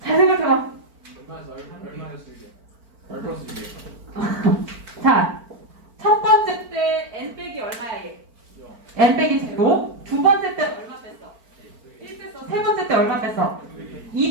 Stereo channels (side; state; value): left; late; 4.4 ms